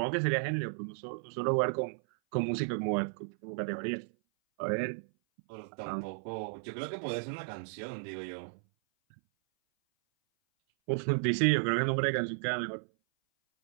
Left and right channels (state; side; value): silent; left; 55 dB below the other